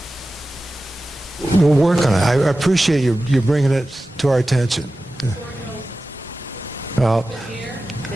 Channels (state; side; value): normal; both; correlation 0.95